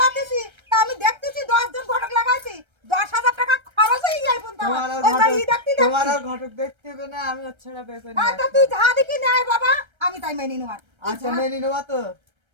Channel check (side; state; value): left; late; 1.3 ms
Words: তা আমি দেখতেছি 10 জন ঘটক লাগাইছি, 10,000 টাকা খরচ হয়ে যায় পর্যন্ত। তোমার আর ঘটক দেখতে হবে না, আমি ওর ছাড়া বিয়ে করি না। তা তুই যা দেখি নেয় বাবা, আমি তাই মেনে নেব। আচ্ছা মেনে নেবো তো?